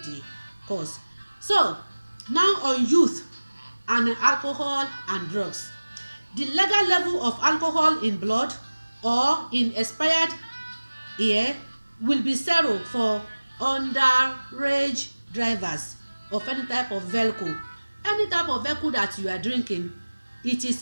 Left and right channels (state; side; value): inverted; both; correlation -1.00